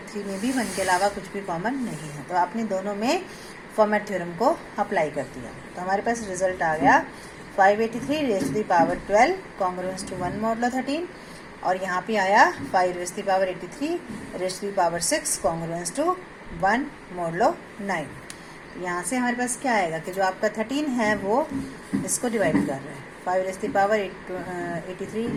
में भी 1 के अलावा कुछ भी कॉमन नहीं है. तो आपने दोनों में फॉर्मेट थ्योरम को अप्लाई कर दिया. तो हमारे पास रिजल्ट आ गया 583 raise to the power 12 congruence to 1 modulo 13, और यहाँ पे आया 5 raise to the power 83 raise to the power 6 congruence to 1 modulo 9. यहाँ से हमारे पास क्या आएगा कि जो आपका 13 है वो इसको डिवाइड कर रहा है 5 raise to the power 83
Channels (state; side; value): identical; both; correlation 1.00